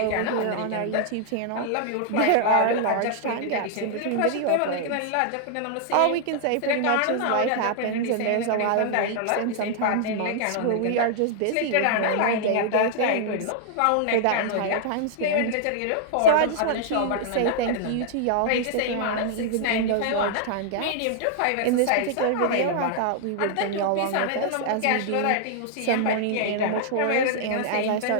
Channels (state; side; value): different; both; correlation -0.01